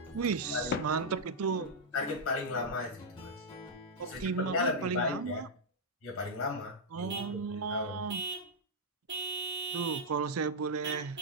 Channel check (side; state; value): both; normal; correlation -0.05